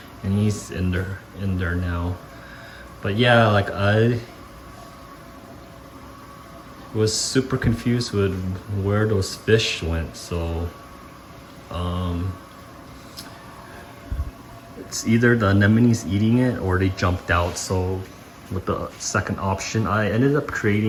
and he's in there now. But yeah, like I was super confused with where those fish went. So it's either the anemone's eating it or they jumped out. So with the second option, I ended up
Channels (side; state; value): both; identical; correlation 1.00